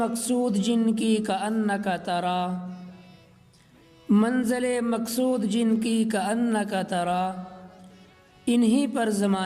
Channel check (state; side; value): identical; both; correlation 1.00